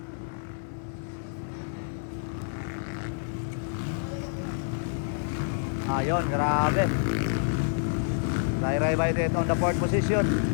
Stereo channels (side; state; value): right; silent; 59 dB below the other